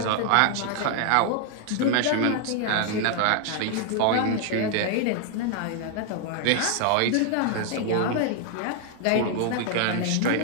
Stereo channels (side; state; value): both; different; correlation 0.00